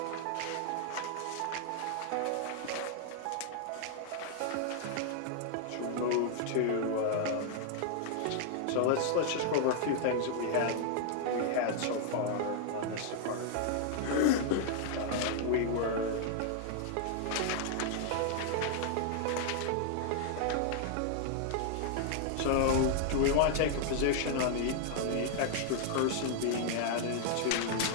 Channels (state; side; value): different; both; correlation 0.00